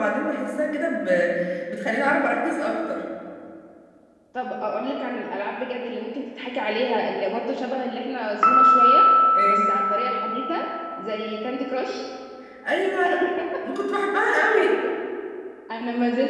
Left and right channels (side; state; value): both; identical; correlation 1.00